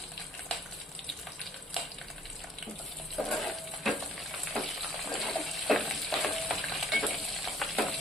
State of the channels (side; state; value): both; normal; correlation 0.59